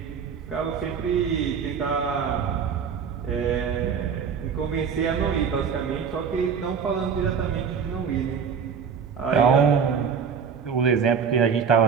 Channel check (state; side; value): quieter; left; 6.7 dB